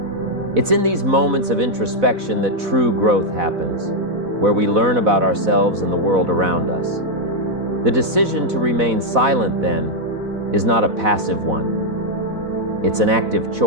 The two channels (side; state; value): left; late; 4.0 ms